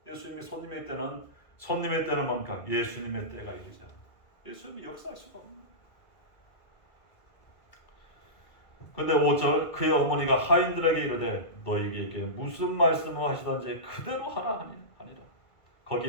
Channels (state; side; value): late; right; 1.8 ms